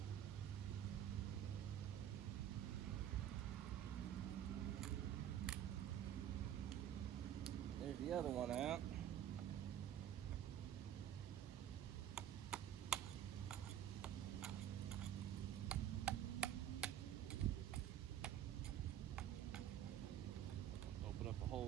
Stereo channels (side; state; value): left; quieter; 10.7 dB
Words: There's the other one out. Open up a